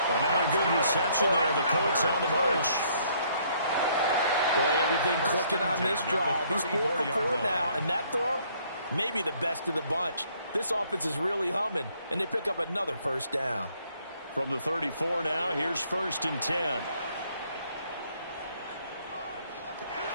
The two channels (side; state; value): both; inverted; correlation -0.65